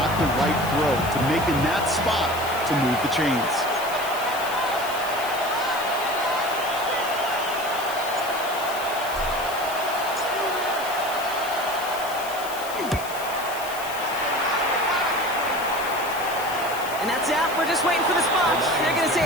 the right throw to make in that spot to move the chains. And that's out. We're just waiting for the spot. They're going to say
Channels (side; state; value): left; noise; hiss, 12 dB below the sound